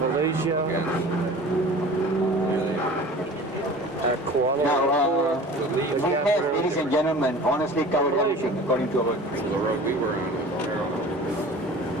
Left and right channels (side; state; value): both; normal; correlation 0.41